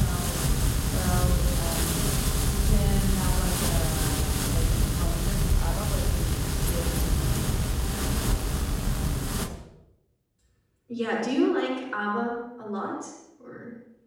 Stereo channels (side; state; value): both; identical; correlation 1.00